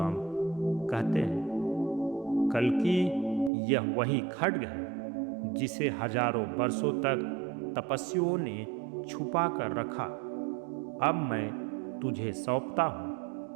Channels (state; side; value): drops out; left; at 3.5 s